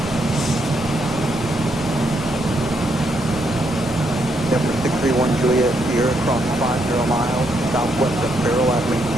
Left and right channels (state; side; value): normal; both; correlation 0.77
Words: Number 631 Juliet Sierra, cross 50 miles, southwest of Farrell, at